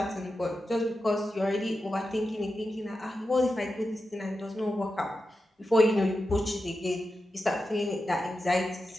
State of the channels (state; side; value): normal; both; correlation 0.90